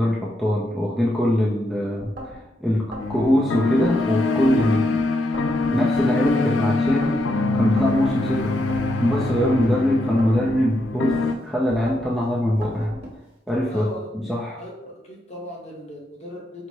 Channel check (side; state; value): both; normal; correlation 0.81